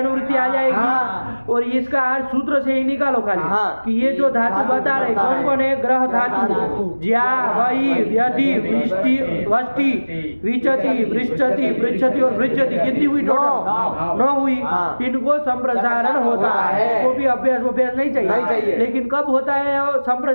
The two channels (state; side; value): inverted; both; correlation -1.00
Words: आ जाएगी। और इसका अर्थ सूत्र से ही निकालो खाली कि ये जो धातु बता रहे कौन कौन है? ग्रह धातु ज्या वही व्यति वष्टि विचति वृश्चति पृच्छति और भृज्यति कितनी हुई? टोटल 9 हुई। इनको संप्रसारण होता है। इसको भी अभ्यास नहीं चाहिए, लेकिन कब होता है